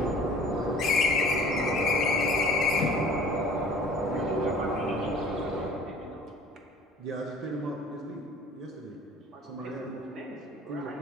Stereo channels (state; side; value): normal; both; correlation 0.48